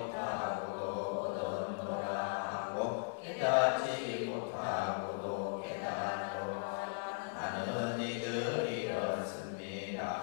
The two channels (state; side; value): silent; right; 53 dB below the other